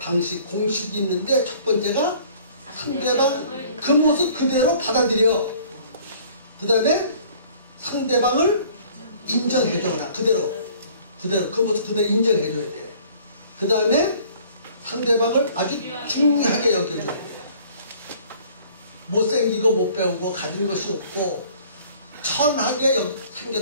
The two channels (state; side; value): inverted; both; correlation -0.53